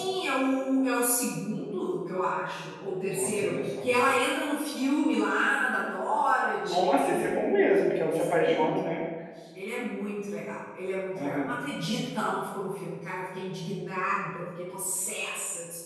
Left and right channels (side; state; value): both; identical; correlation 1.00